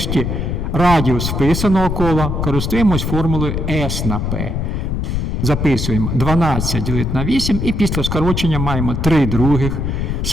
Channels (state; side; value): noise; left; rumble, 1 dB below the sound